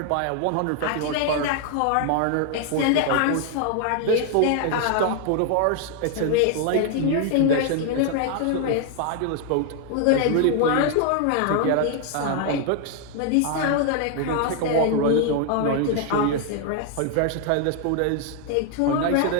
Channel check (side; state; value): both; different; correlation 0.00